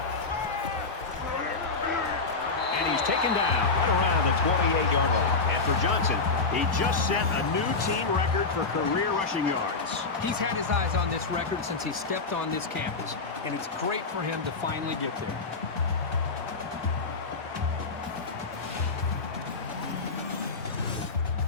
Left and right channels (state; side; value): quieter; right; 4.1 dB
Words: Taken down right around the 28-yard line. And for Johnson, he just set a new team record for career rushing yards. He's had his eyes on this record since he stepped on this campus, and it's great for him to finally get there.